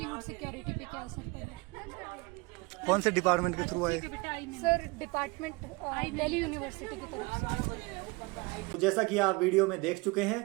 सिक्योरिटी पे क्या असर पड़ा। कौन से डिपार्टमेंट के थ्रू आए? सर डिपार्टमेंट दिल्ली यूनिवर्सिटी की तरफ से। तो जैसा कि आप वीडियो में देख चुके हैं,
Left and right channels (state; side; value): quieter; left; 26.0 dB